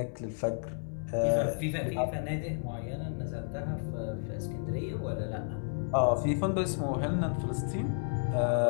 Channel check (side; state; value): right; silent; digital silence